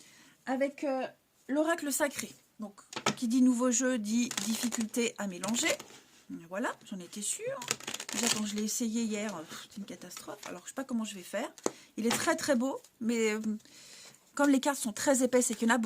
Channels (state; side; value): identical; both; correlation 1.00